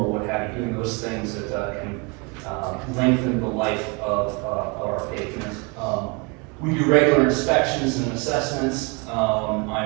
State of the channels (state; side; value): quieter; left; 30.2 dB